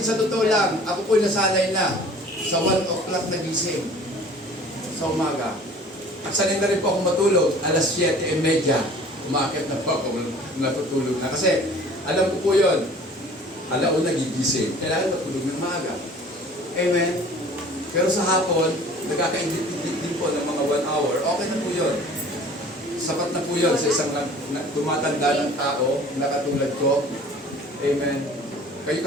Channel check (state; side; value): normal; both; correlation 0.48